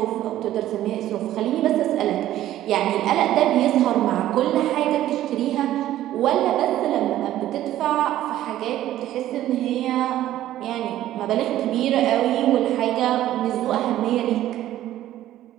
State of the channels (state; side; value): quieter; left; 13.4 dB